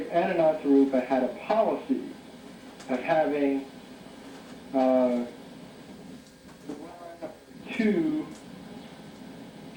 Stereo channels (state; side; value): identical; both; correlation 1.00